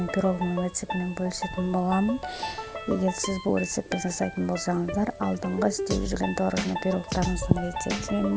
пирогның рецептімен бөлісетін боламын. Егер сіз бұл рецептті жасайтын болсаңыздар, алдыңғы істеп жүрген творожный пирогтарыңыздың рецептімен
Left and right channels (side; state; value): both; identical; correlation 1.00